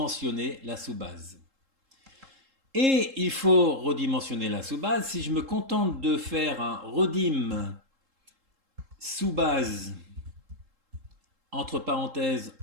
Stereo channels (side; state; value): left; late; 3.7 ms